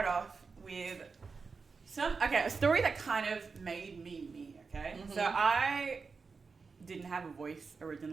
off with a story that kind of made me, okay? Mm-hmm. So I didn't have a voice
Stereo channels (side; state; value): left; quieter; 4.8 dB